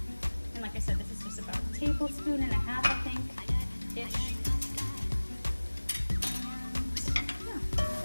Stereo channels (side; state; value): both; inverted; correlation -1.00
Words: And like I said, this is just about a tablespoon and a half, I think, ish.